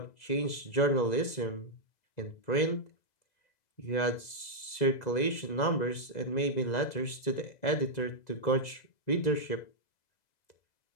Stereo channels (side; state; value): right; late; 2.0 ms